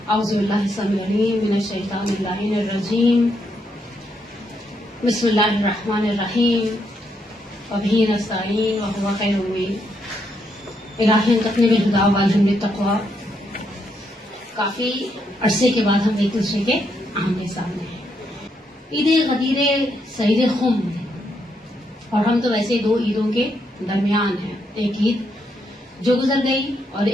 اعوذ باللہ السمیع العلیم من الشیطان اللعین الرجیم بسم اللہ الرحمن الرحیم وبہ نستعین وہو خیر المعین. الہی انتقنی بالہدی والہدی بالتقوی. کافی عرصے کے بعد ہم ایک دوسرے کے آمنے سامنے ہیں. عید غدیر سعید خم اور ہم تو ویسے دو عیدوں کے درمیان ہیں. ایک عید جو گزر گئی اور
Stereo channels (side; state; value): both; normal; correlation 0.78